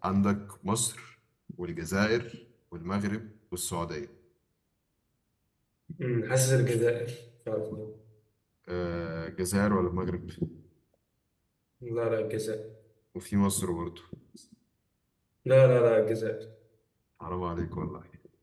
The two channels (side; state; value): both; identical; correlation 1.00